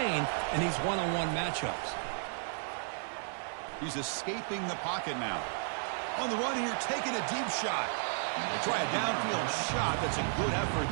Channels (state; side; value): silent; left; 56 dB below the other